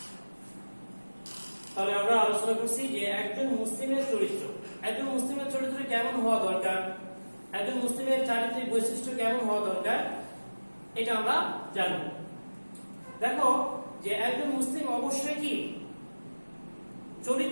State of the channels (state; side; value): inverted; both; correlation -1.00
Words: তাহলে আমরা আলোচনা করছি যে একজন মুসলিমের চরিত্র, একজন মুসলিমের চরিত্র কেমন হওয়া দরকার, একজন মুসলিমের চারিত্রিক বৈশিষ্ট্য কেমন হওয়া দরকার, এটা আমরা জানব। দেখো যে একজন মুসলিম অবশ্যই কি